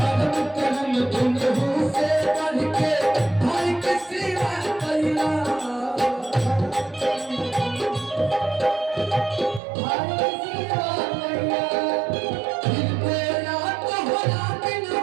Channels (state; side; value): drops out; left; at 9.6 s